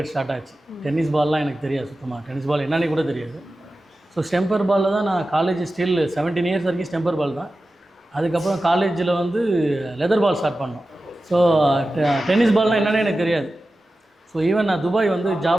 ஸ்டார்ட் ஆச்சு. டென்னிஸ் பால்லாம் எனக்கு தெரியாது சுத்தமாக. டென்னிஸ் பால் என்னன்னு கூட தெரியாது. ஸோ ஸ்டெம்பர் பாலில் தான் நான் காலேஜ் ஸ்டில் 17 இயர்ஸ் வரைக்கும் ஸ்டெம்பர் பால் தான். அதுக்கப்புறம் காலேஜில் வந்து லெதர் பால் ஸ்டார்ட் பண்ணோம். ஸோ டென்னிஸ் பால்னால் என்னென்னு எனக்கு தெரியாது. ஸோ ஈவன் நான் துபாய் வந்து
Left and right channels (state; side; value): normal; both; correlation 0.94